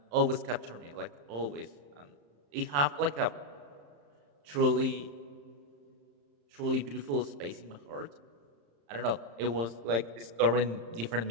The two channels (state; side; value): late; left; 35 ms